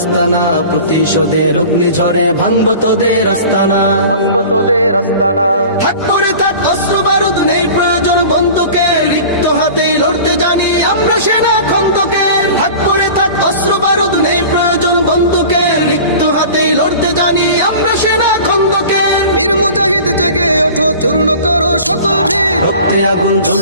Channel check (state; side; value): inverted; both; correlation -0.40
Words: না। প্রতিশোধের অগ্নিঝড়ে ভাঙবো তোদের আস্তানা, ভাঙবো তোদের আস্তানা। থাক করে থাক অস্ত্র বারুদ, নেই প্রয়োজন বন্দুকের। রিক্ত হাতেই লড়তে জানি আমরা সেনা খন্দকের। থাক করে থাক অস্ত্র বারুদ, নেই প্রয়োজন বন্দুকের। রিক্ত হাতেই লড়তে জানি আমরা সেনা খন্দকের। বীর মুজাহিদ জেগে ওঠো, চূর্ণ করো সকল ভিড়। রক্তে আগুন